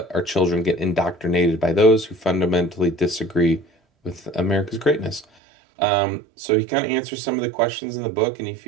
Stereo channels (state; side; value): drops out; left; at 5.2 s